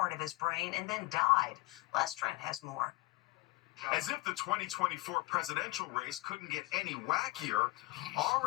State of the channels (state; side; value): quieter; right; 21.3 dB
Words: of his brain and then died. Les Trent has more. As if the 2024 presidential race couldn't get any wackier,